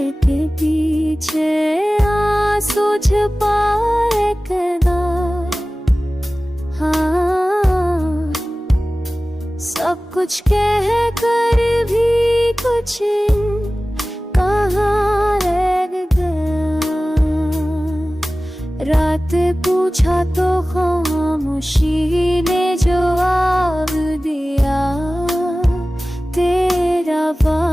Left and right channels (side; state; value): both; normal; correlation 0.97